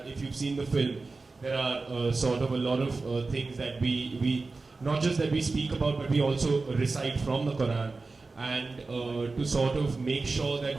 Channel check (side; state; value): left; quieter; 3.8 dB